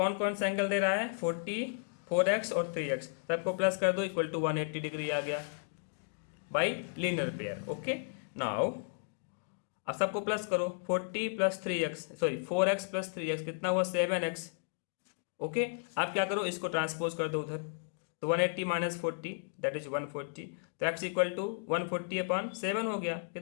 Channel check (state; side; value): silent; right; digital silence